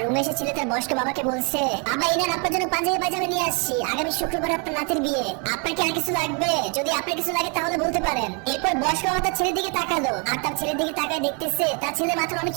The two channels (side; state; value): left; quieter; 34.8 dB